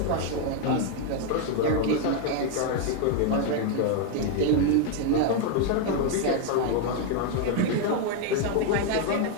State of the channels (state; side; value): different; both; correlation 0.01